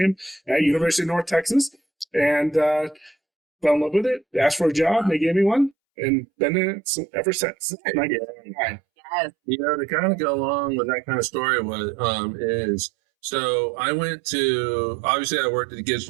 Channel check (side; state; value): left; drops out; at 5.8 s